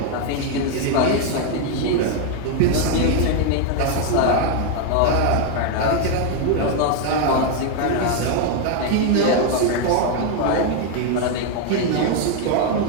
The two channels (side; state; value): both; different; correlation 0.01